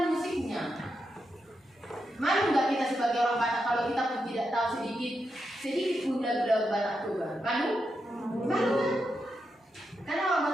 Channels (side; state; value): both; normal; correlation 0.85